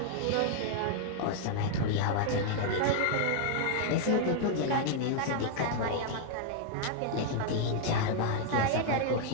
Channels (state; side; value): different; both; correlation -0.01